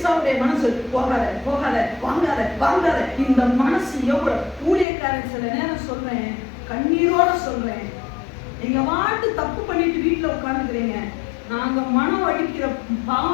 மனசு போகாத போகாத வாங்காத வாங்காத. இந்த மனசு எவ்வளவு ஊழியக்காரன் சில நேரம் சொல்றேன், கண்ணீரோட சொல்றேன், நீங்க வாட்டு தப்பு பண்ணிட்டு வீட்டுல உட்கார்ந்துக்கிறீங்க, நாங்க மனம் அடிக்கிற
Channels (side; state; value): right; drops out; at 4.9 s